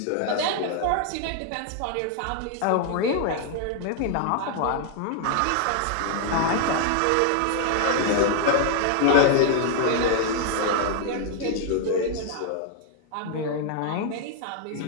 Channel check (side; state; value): both; different; correlation 0.00